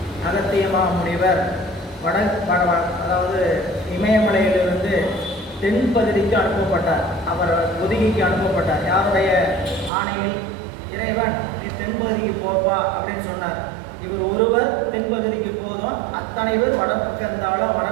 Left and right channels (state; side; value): drops out; left; at 9.9 s